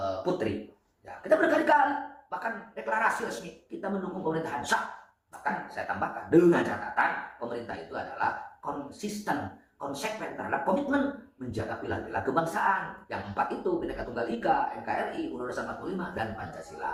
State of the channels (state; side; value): identical; both; correlation 1.00